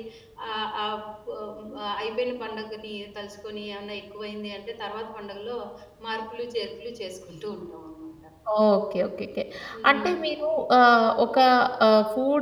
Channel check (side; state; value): both; identical; correlation 1.00